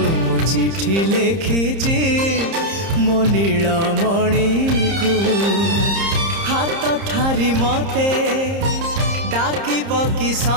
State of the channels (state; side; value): late; left; 30 ms